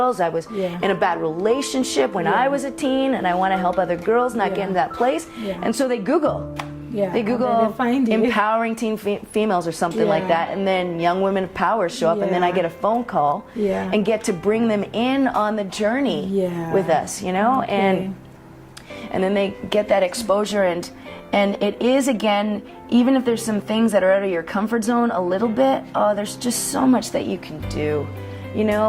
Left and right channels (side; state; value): both; identical; correlation 1.00